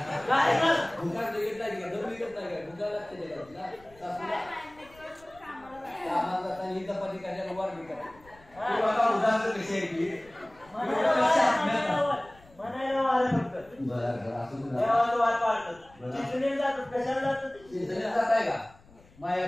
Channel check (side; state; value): left; noise; rumble, 26 dB below the sound